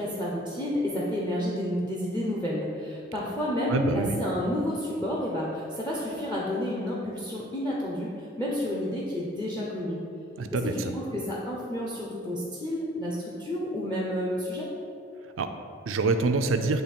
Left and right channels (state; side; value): normal; both; correlation 0.52